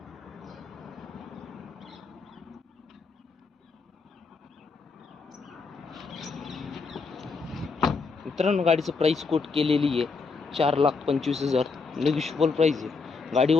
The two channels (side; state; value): right; quieter; 4.6 dB